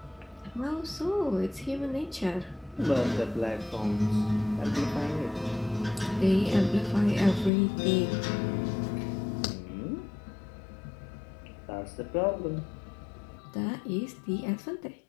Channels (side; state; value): right; drops out; at 7.5 s